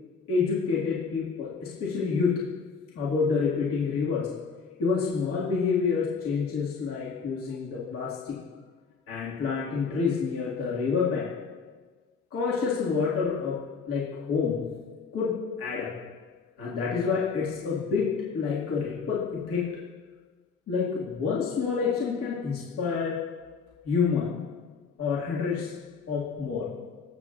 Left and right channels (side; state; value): right; quieter; 5.2 dB